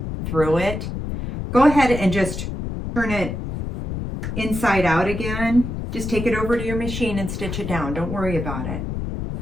through it, go ahead and just turn it inside out again. Just take it over to your machine and stitch it down. Don't worry about it.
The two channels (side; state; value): left; noise; rumble, 5 dB below the sound